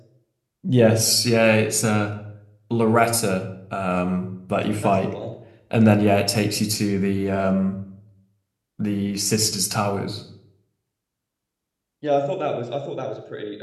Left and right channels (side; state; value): both; identical; correlation 1.00